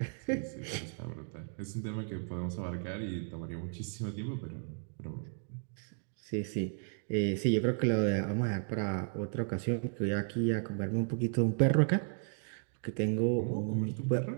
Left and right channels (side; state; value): left; silent; 55 dB below the other